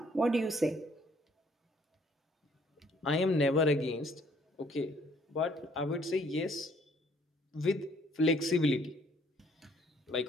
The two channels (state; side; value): normal; both; correlation 0.62